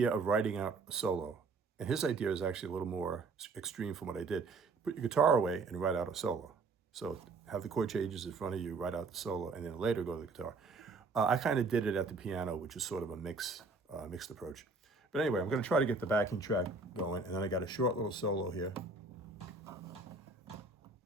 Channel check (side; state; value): left; quieter; 3.9 dB